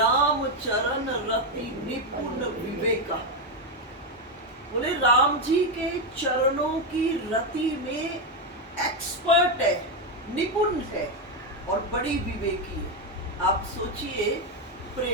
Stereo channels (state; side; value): normal; both; correlation 0.06